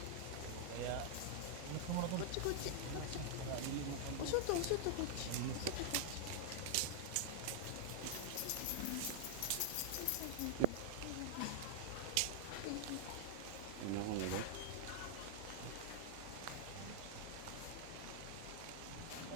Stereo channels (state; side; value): different; both; correlation -0.01